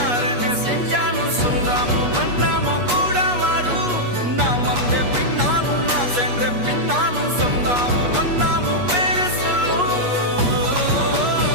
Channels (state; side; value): late; left; 8.3 ms